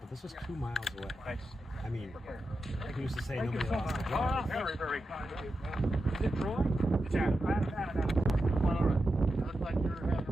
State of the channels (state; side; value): normal; both; correlation 0.89